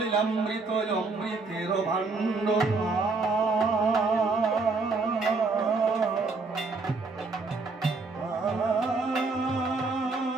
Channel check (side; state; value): left; quieter; 3.9 dB